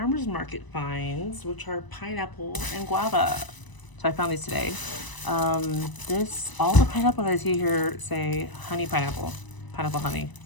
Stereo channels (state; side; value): late; right; 1.0 ms